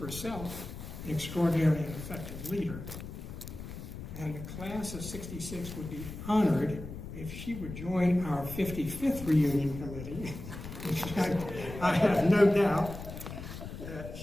an extraordinary and effective leader. And the class of '66 would be honored if she would join our 55th reunion committee, which I have no doubt that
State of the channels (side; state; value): left; noise; rumble, 10 dB below the sound